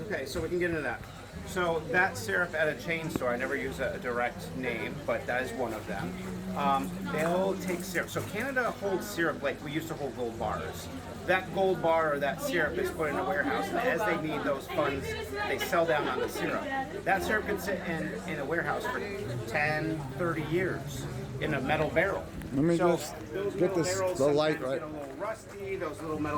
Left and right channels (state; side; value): identical; both; correlation 1.00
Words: Okay, so we can get into that. So that syrup at a chain store, I never use a direct name, but that is one of them. They'll take syrup. So Canada holds syrup like we used to hold gold bars. That gold bar or that syrup is put in a warehouse, and as they need those funds, they sell down on the syrup. That syrup can sit in a warehouse for 10, 30 years in a metal barrel. Let me just get the light right. Get a little rusty. Those little